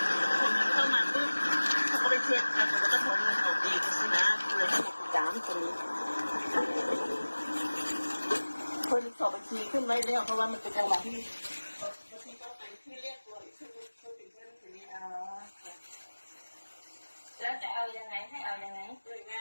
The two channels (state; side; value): inverted; both; correlation -1.00